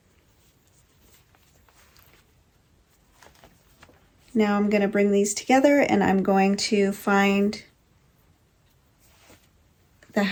Now I'm going to bring these together, and I'm going to find the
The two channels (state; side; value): identical; both; correlation 1.00